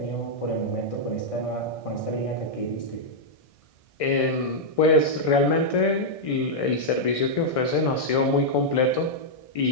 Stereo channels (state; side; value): late; right; 1.6 ms